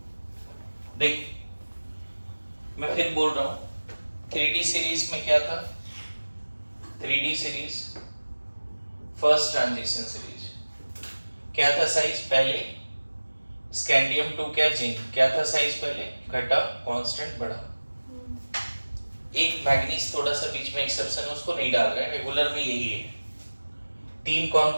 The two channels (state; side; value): inverted; both; correlation -1.00